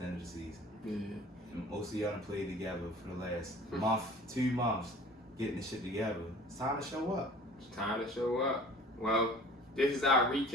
the end of the season. Yeah. And most of y'all done played together for the last month, 2 months, getting this shit together. It's time to show up. It's time to show up. Well, this is our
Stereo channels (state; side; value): normal; both; correlation 0.46